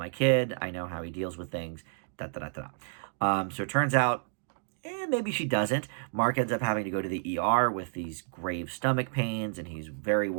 kid. I know how he deals with things. Da, da, da, da. So it turns out, maybe she doesn't. Mark ends up having to go to the ER with these grave stomach pains, and he's very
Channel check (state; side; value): silent; left; digital silence